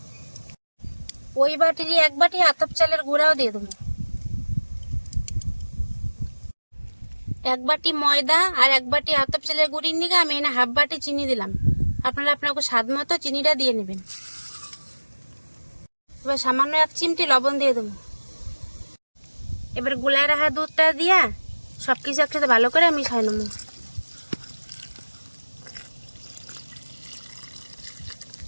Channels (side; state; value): both; inverted; correlation -1.00